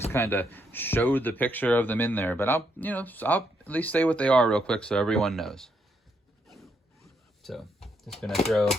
kind of showed the picture of them in there, but I'll at least say what they are real quick so everyone knows. So just gonna throw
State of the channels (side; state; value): both; normal; correlation 0.76